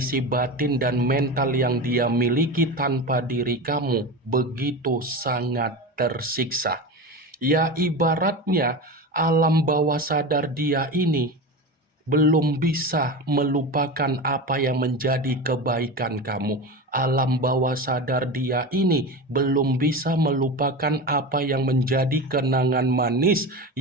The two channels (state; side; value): normal; both; correlation 0.25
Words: batin dan mental yang dia miliki tanpa diri kamu begitu sangat tersiksa. Ya, ibaratnya alam bawah sadar dia ini belum bisa melupakan apa yang menjadi kebaikan kamu. Alam bawah sadar dia ini belum bisa melupakan apa yang menjadi kenangan manis